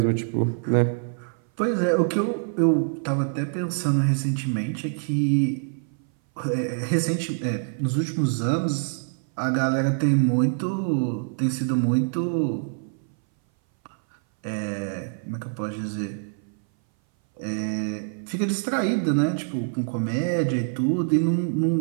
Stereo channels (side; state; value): left; silent; 59 dB below the other